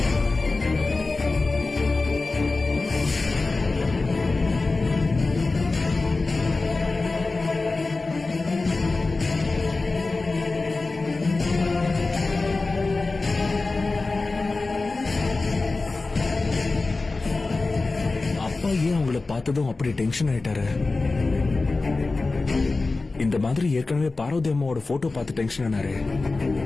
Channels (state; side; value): quieter; right; 3.6 dB